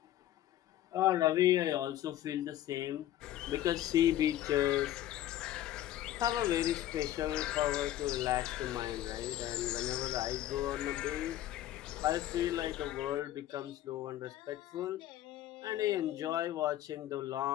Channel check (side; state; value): right; quieter; 13.2 dB